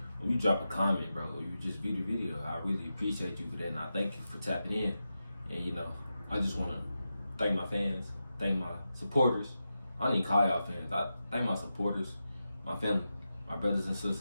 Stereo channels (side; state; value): both; inverted; correlation -0.90